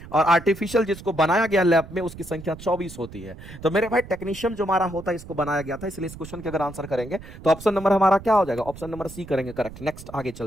और आर्टिफिशियल जिसको बनाया गया लैब में उसकी संख्या 24 होती है। तो मेरे भाई टेक्नीशियम जो हमारा होता है इसको बनाया गया था, इसलिए इस क्वेश्चन के अगर आंसर करेंगे तो ऑप्शन नंबर हमारा क्या हो जाएगा, ऑप्शन नंबर सी करेंगे करेक्ट। नेक्स्ट आगे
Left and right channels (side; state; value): right; noise; rumble, 15 dB below the sound